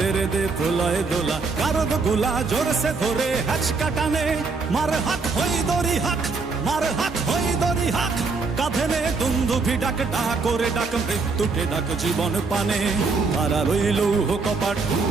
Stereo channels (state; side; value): quieter; left; 4.3 dB